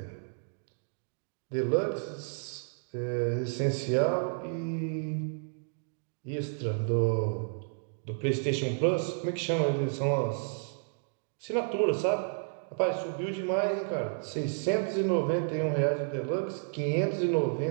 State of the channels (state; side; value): silent; left; digital silence